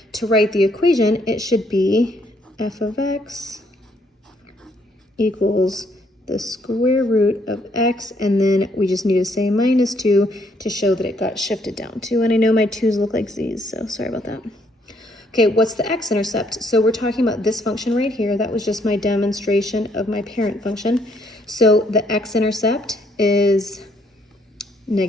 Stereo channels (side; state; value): both; normal; correlation 0.69